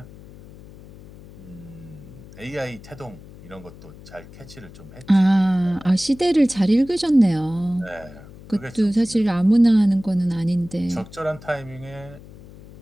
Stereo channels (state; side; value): noise; left; hum, 19 dB below the sound